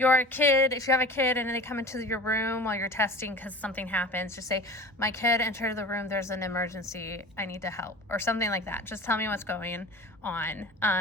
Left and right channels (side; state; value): both; normal; correlation 0.37